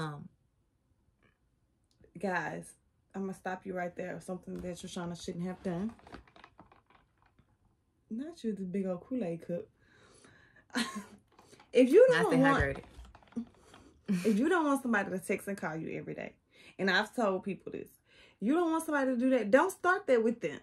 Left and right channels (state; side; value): identical; both; correlation 1.00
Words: Guys, I'm going to stop you right there. Something that Shoshana shouldn't have done. Not you, this big old Kool-Aid cup. If you don't want somebody to text and call you every day, and I've told people this, you don't want somebody to do that, don't start that with them.